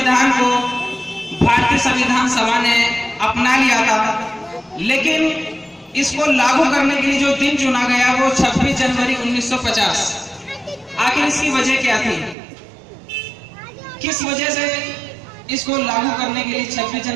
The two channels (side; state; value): left; drops out; at 12.4 s